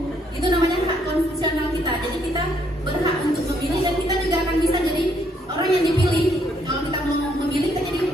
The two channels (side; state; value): both; normal; correlation 0.70